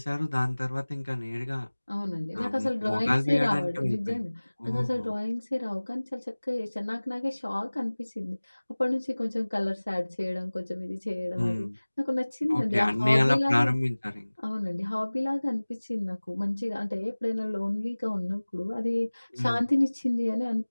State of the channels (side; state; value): both; inverted; correlation -1.00